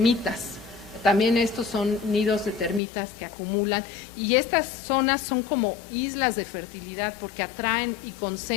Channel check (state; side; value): drops out; right; at 2.8 s